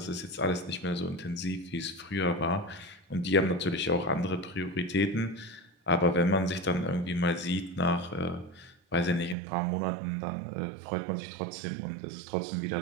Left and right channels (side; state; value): left; drops out; at 9.3 s